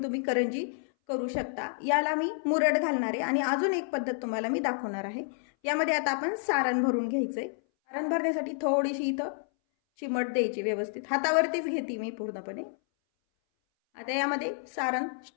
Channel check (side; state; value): right; silent; 58 dB below the other